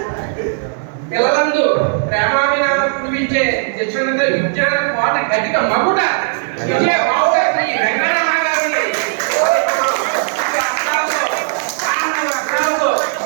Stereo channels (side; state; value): left; silent; 69 dB below the other